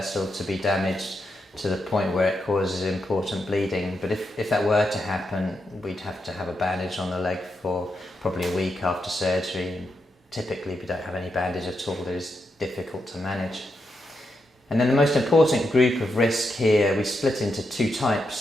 to be damaged to the point where it causes important bleeding, but if that were to happen, we'd have to have a bandage on the leg for probably a week after surgery, and typically we don't have any bandage at all. It is difficult to manage. And then the most important group of risk here, we split into two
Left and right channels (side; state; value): both; normal; correlation 0.84